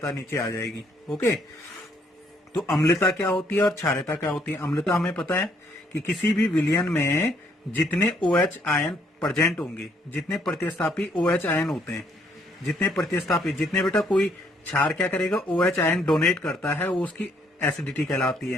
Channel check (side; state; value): both; normal; correlation 0.68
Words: नीचे आ जाएगी। ओके, तो अम्लता क्या होती है और क्षारीयता क्या होती है। अम्लता हमें पता है कि किसी भी विलयन में जितने OH आयन प्रेजेंट होंगे, जितने प्रतिस्थापी OH आयन होते हैं, जितने बेटा कोई क्षार क्या करेगा, OH आयन डोनेट करता है, वो उसकी एसिडिटी कहलाती